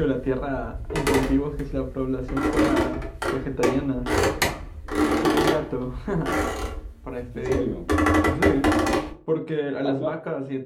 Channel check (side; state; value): both; identical; correlation 1.00